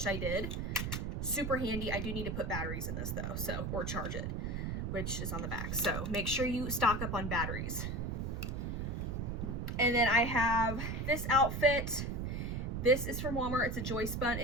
I did. Super handy. I do need to put batteries in this though, so, or charge it, which is on the back. So make sure you stock up on batteries. And then I have this outfit. This is from Walmart. It's a joist bun.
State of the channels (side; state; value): right; noise; rumble, 2 dB below the sound